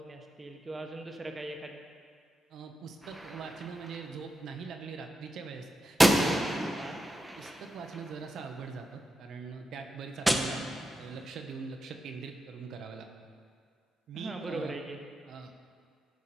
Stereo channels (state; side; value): normal; both; correlation 0.88